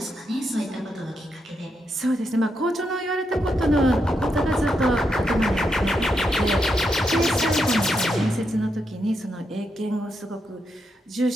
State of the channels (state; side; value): normal; both; correlation 0.82